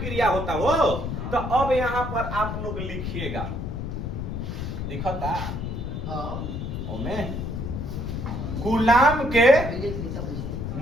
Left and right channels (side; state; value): left; noise; rumble, 4 dB below the sound